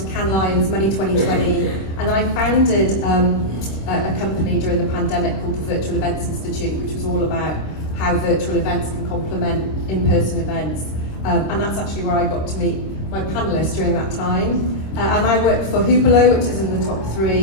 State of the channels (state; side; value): late; right; 26 ms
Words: Cannes Lions, Money 2020, and then I founded a company during the pandemic called the Virtual Events Institute, which was all about how virtual events can complement in-person events, and that's actually where I got to meet my panelists during that time. And I work for Hublot, which is in the top